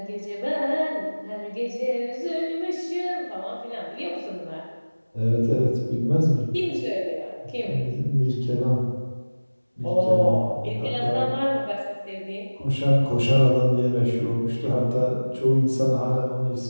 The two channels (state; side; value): inverted; both; correlation -1.00